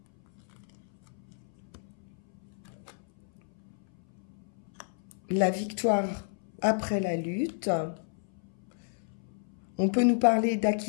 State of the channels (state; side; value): silent; right; 57 dB below the other